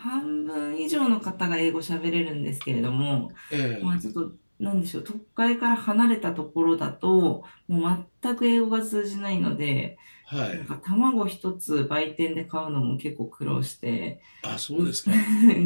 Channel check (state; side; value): inverted; both; correlation -1.00